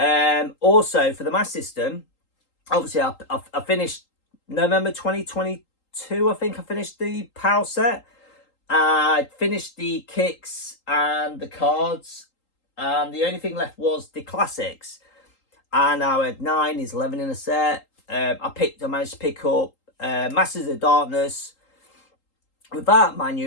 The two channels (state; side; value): late; right; 3.8 ms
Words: Also for the Master System, obviously I finished November 2022. I think I finished the PAL set. I finished the kicks and the cards. and the only thing left was the classics. And I had 9, is 11 in a set. I managed to pick up Masters of Darkness without